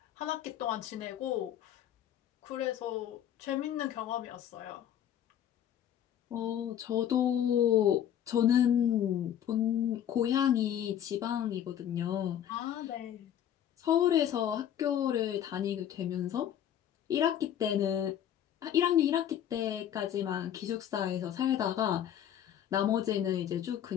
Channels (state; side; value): quieter; right; 10.3 dB